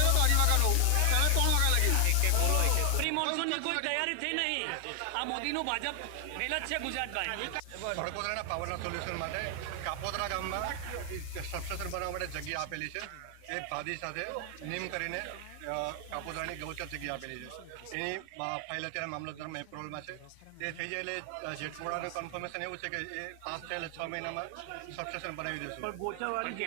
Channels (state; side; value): different; both; correlation 0.00